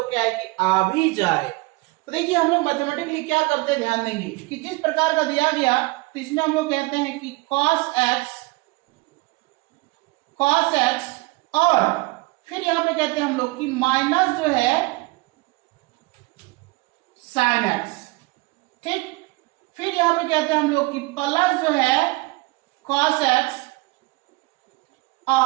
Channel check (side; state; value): left; quieter; 23.7 dB